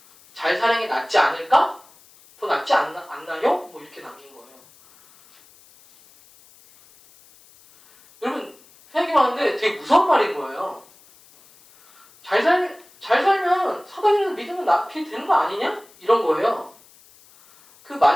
잘 사는 게 낫지 않을까? 더 낫지 않나요? 뭐 이렇게 남긴 거예요. 여러분 생각해봤는데 되게 무서운 말인 거예요. 잘 살면 사단을 믿으면 낫게 되는 거 아니냐? 이런 거예요. 그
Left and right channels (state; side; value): noise; left; hiss, 27 dB below the sound